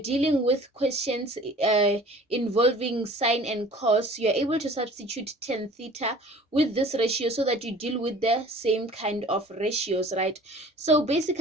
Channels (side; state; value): both; normal; correlation 0.47